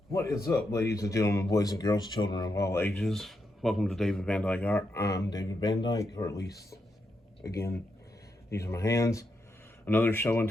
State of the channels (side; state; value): both; normal; correlation 0.83